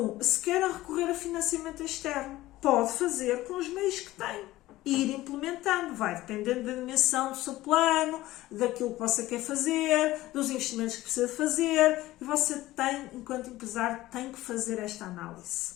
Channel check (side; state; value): right; quieter; 16.7 dB